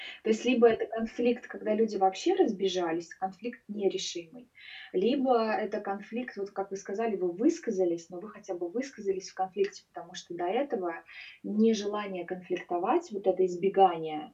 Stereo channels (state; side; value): identical; both; correlation 1.00